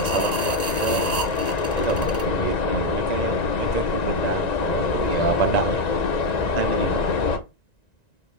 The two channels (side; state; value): right; late; 1.9 ms